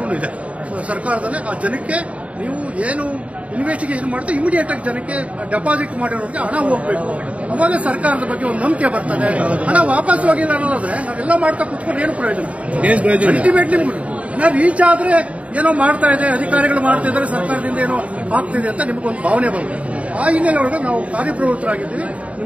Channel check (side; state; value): left; late; 0.065 ms